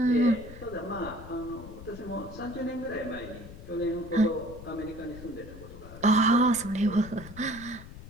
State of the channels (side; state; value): left; noise; rumble, 15 dB below the sound